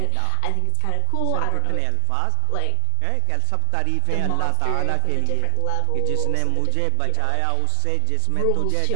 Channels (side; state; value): both; different; correlation 0.00